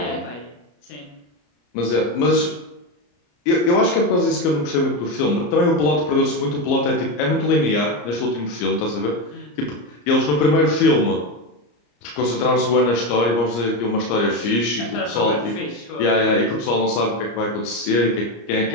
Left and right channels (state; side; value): late; right; 34 ms